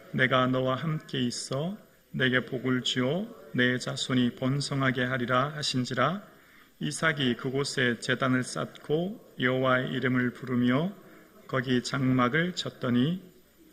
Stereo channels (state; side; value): identical; both; correlation 1.00